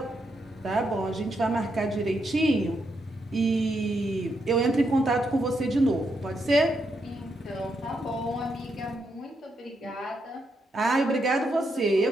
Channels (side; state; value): both; normal; correlation 0.80